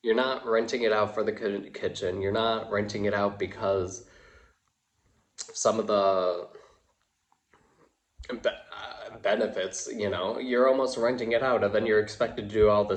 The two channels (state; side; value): identical; both; correlation 1.00